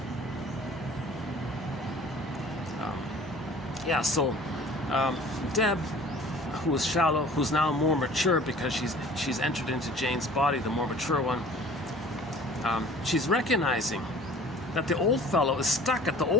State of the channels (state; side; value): normal; both; correlation 0.48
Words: Yeah, so Deb, who was shallow, who's now more mature because she's entered into Jane's body, the more mature one. She's recognizing that the old fellow is stuck at the